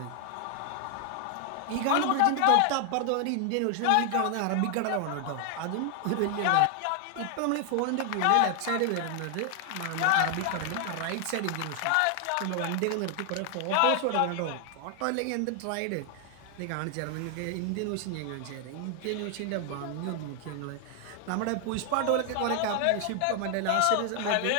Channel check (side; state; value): both; different; correlation 0.00